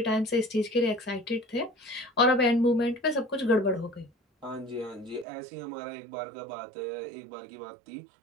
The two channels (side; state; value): left; drops out; at 5.2 s